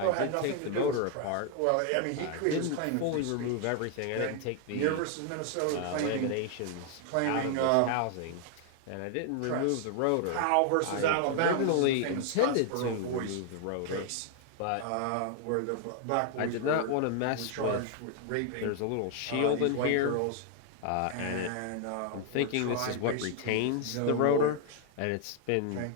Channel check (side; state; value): both; different; correlation 0.00